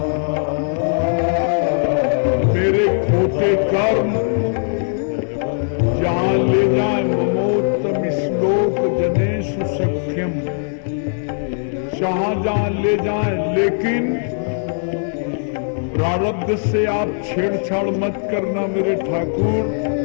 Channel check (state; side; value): silent; right; 66 dB below the other